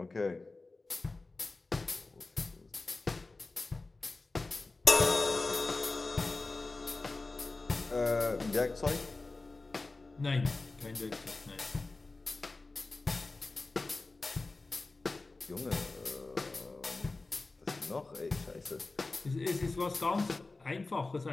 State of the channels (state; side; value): quieter; right; 3.4 dB